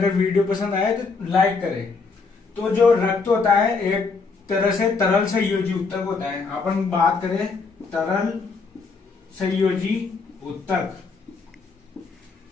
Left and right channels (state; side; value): quieter; right; 4.5 dB